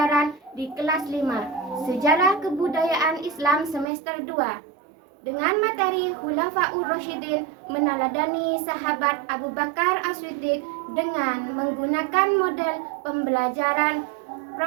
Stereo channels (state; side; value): drops out; left; at 3.9 s